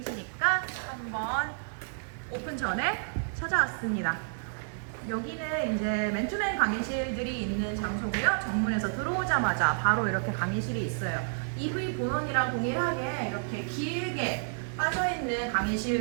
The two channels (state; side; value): silent; left; digital silence